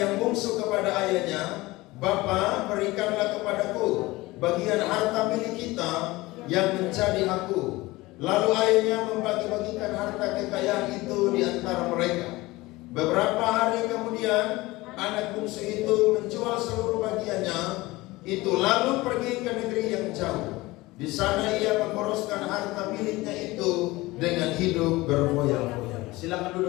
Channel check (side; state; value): right; quieter; 20.4 dB